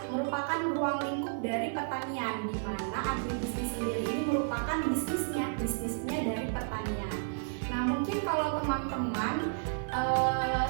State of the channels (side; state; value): left; silent; digital silence